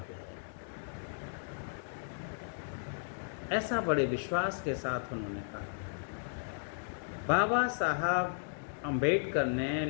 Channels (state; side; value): silent; right; digital silence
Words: है। ऐसा बड़े विश्वास के साथ उन्होंने कहा। बाबा साहब अम्बेडकर ने